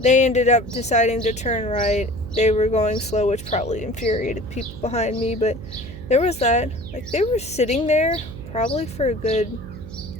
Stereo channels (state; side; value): noise; right; hum, 13 dB below the sound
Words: They ended up deciding to turn right. They were going slow, which probably infuriated people behind me. But there was that. Like, they were sitting there probably for a good